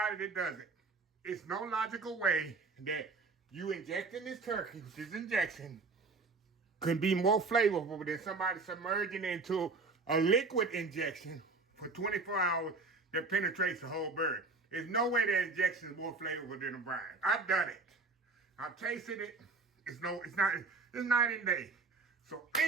that does it. It's no logical way that you injecting this turkey, this injection, could be more flavorful than somebody submerging into a liquid injection for 24 hours that penetrates the whole bird. There's no way that injection is more flavorful than a brine. I've done it. I've tasted it. It's night and day. So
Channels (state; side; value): quieter; left; 3.9 dB